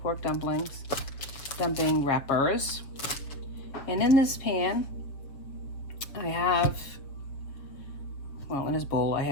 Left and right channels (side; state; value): right; late; 6.9 ms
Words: pork dumpling wrappers, and in this pan I have, in this bowl I